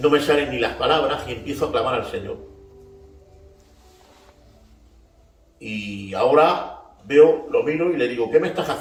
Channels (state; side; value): identical; both; correlation 1.00